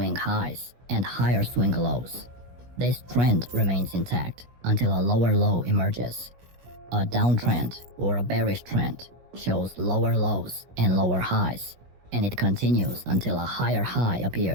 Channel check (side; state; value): left; late; 17 ms